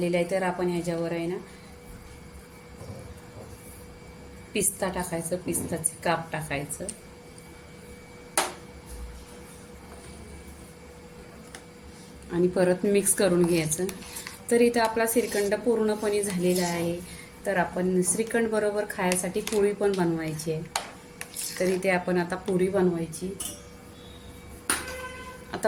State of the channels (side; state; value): both; identical; correlation 1.00